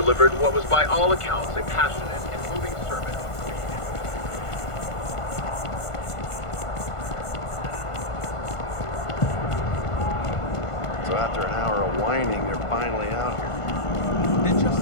what was by all accounts a passionate and moving sermon. So after an hour of whining, they're finally out here. They're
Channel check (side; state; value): right; late; 1.5 ms